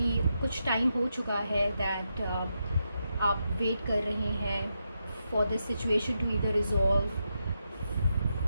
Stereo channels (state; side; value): inverted; both; correlation -0.84